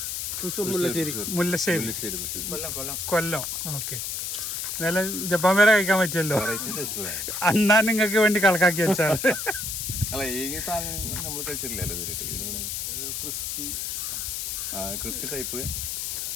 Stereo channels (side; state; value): left; noise; hiss, 3 dB below the sound